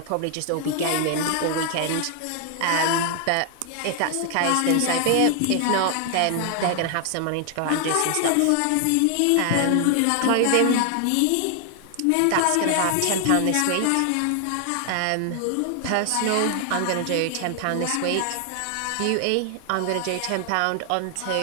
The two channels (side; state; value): both; different; correlation 0.00